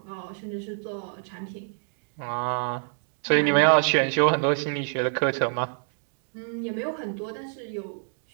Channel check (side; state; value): left; silent; digital silence